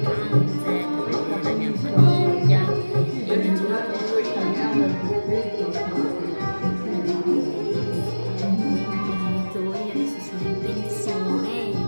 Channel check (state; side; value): inverted; both; correlation -1.00